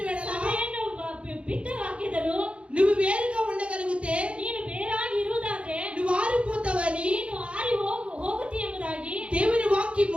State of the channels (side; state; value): left; late; 0.060 ms